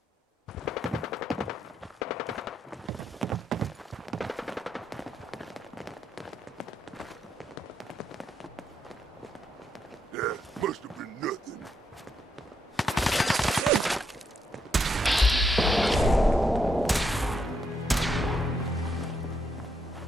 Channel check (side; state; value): both; normal; correlation 0.78